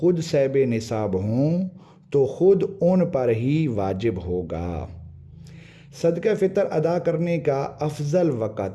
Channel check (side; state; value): both; identical; correlation 1.00